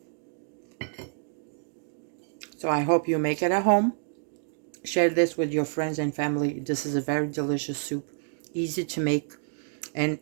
So I hope you make it at home. Share this with your friends and family. This is a very delicious soup, easy to make. And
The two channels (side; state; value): left; silent; 59 dB below the other